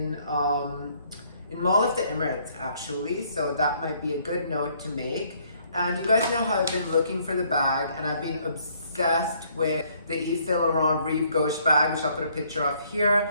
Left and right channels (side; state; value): both; inverted; correlation -0.65